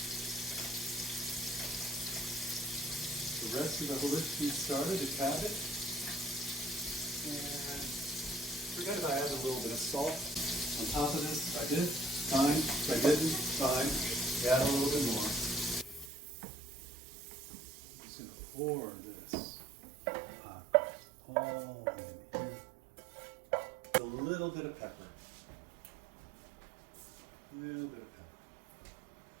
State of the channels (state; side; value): drops out; left; at 16.1 s